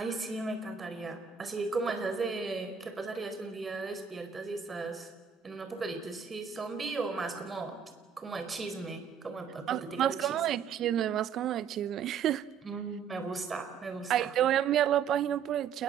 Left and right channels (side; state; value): left; quieter; 7.2 dB